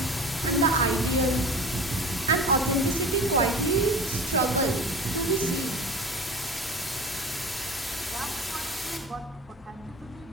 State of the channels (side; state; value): both; normal; correlation 0.37